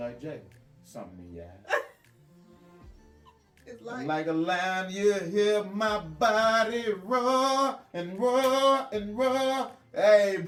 Jay. Something in your eyes. It's Like a lion, you hear my body roar and roar and roar. Hey,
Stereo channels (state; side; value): identical; both; correlation 1.00